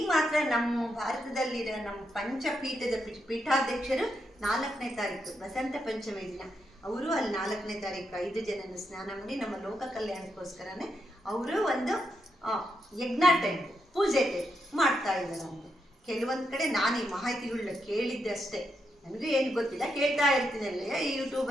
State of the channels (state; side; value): normal; both; correlation 0.82